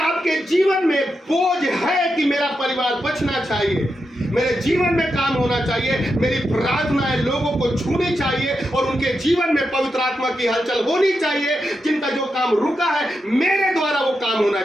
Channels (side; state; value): both; normal; correlation 0.86